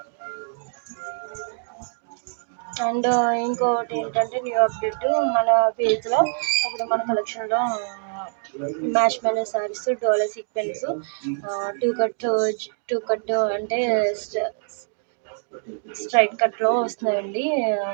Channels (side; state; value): left; silent; digital silence